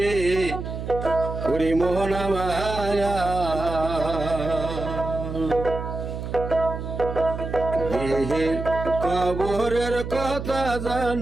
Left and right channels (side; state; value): right; noise; hum, 6 dB below the sound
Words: ওরে মোহনা মায়া। দেহের কবরের কথা